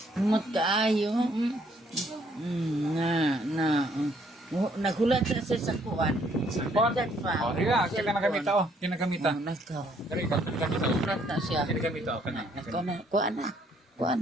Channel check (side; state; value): both; normal; correlation 0.67